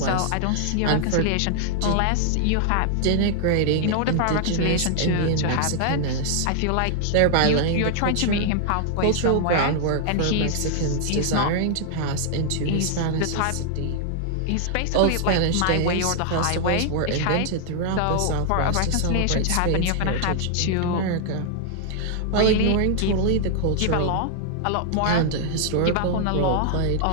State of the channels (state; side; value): different; both; correlation -0.01